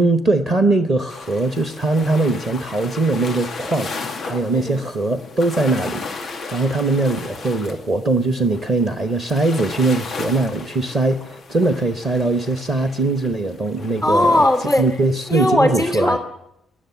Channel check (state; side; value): normal; both; correlation 0.69